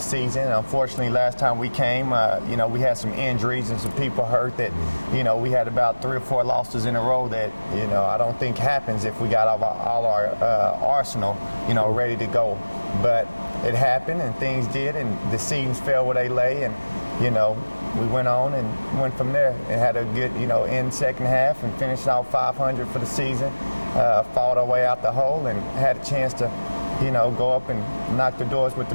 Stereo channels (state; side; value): inverted; both; correlation -1.00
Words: And unfortunately, last time we came, we had some injuries and some people hurt that, we had about 3 or 4 losses in a row that, I don't think happens if we got all our arsenal, ready to go. But it happened, and things did, and the seasons fell where they lay, and, we went on and went from there and had a good, end second half and finished out 500 for the season, fought our way out the hole and had a chance to, go up and knock the doors with the